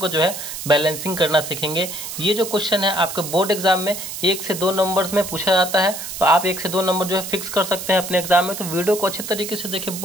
जो है बैलेंसिंग करना सीखेंगे। ये जो क्वेश्चन है आपके बोर्ड एग्जाम में 1 से 2 नंबर्स में पूछा जाता है, तो आप 1 से 2 नंबर जो है फिक्स कर सकते हैं अपने एग्जाम में। तो वीडियो को अच्छे तरीके से देखिए,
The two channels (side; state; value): right; noise; hiss, 8 dB below the sound